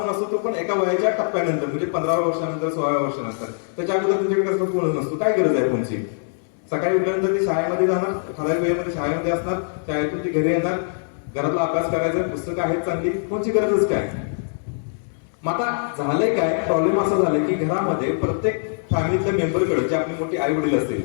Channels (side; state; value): right; silent; digital silence